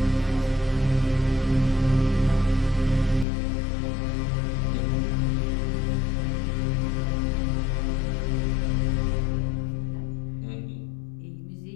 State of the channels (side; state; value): right; drops out; at 3.2 s